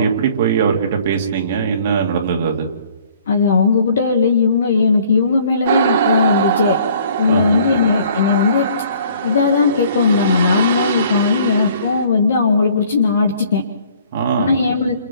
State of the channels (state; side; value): inverted; both; correlation -0.56